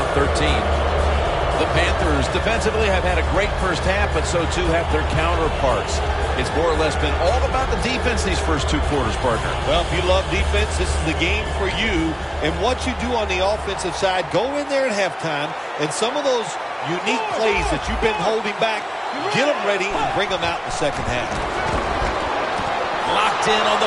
13. The Panthers defensively have had a great first half, but so too have their counterparts. It's more or less been all about the defense these first 2 quarters, partner. Well, if you love defense, this is the game for you. And what you do on the offensive side, go in there at halftime, and some of those unique plays that you've been holding back, get them ready and bring them out in the second half. Locked in on the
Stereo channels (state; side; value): identical; both; correlation 1.00